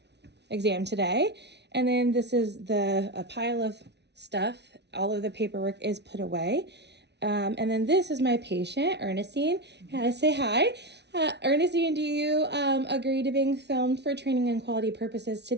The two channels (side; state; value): left; late; 0.50 ms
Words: exam today. And then this is a pile of stuff. All of the paperwork is put away. And then this is my patient, Ernestine. Say hi. Ernestine, do you agree to being filmed for training and quality purposes